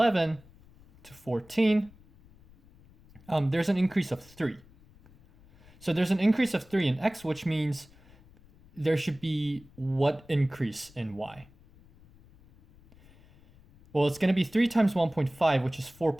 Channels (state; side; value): noise; left; rumble, 26 dB below the sound